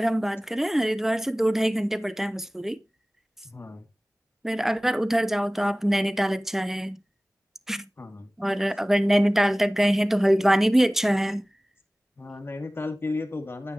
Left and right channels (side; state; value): both; normal; correlation 0.98